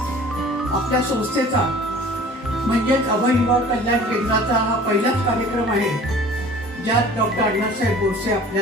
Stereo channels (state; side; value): normal; both; correlation 0.47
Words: आपल्या संस्थेचा म्हणजेच अभय युवा कल्याण केंद्राचा हा पहिलाच कार्यक्रम आहे ज्यात डॉक्टर अण्णासाहेब बोरसे